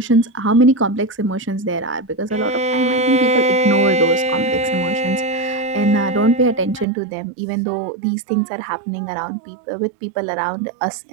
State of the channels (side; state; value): left; drops out; at 6.9 s